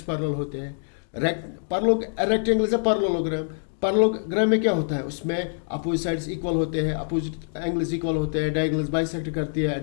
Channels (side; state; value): right; silent; digital silence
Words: पैरेलल होते हैं। Rectangle is a parallelogram. Parallelogram में क्या होता है? उसमें अपोजिट साइड्स इक्वल होते हैं, अपोजिट एंगल्स इक्वल होते हैं, डायगोनल्स बाइसेक्ट करती है,